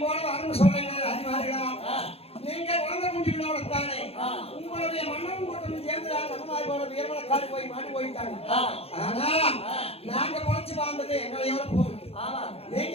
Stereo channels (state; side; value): late; right; 0.29 ms